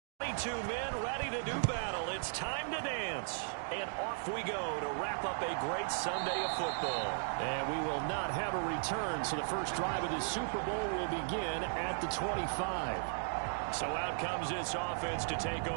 Two men ready to do battle. It's time to dance. And off we go to wrap up a great Sunday of football. And we will not have a return, so the first drive of the Super Bowl will begin at the 25. So out comes this offense to take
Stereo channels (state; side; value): silent; left; digital silence